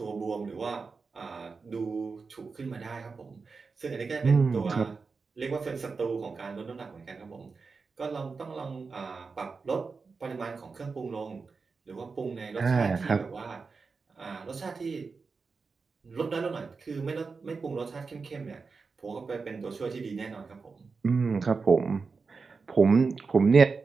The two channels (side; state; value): left; quieter; 4.7 dB